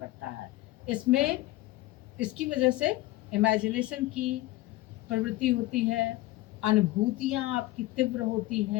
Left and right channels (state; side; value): quieter; right; 17.7 dB